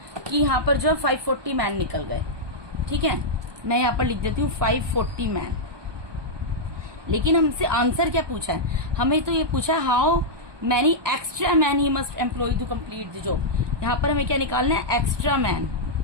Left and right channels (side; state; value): left; late; 1.2 ms